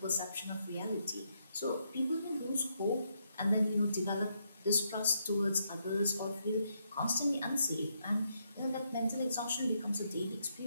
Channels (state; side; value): inverted; both; correlation -0.78